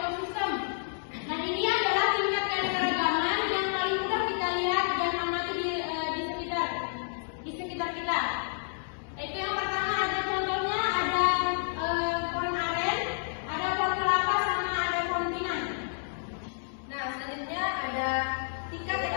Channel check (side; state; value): right; silent; 58 dB below the other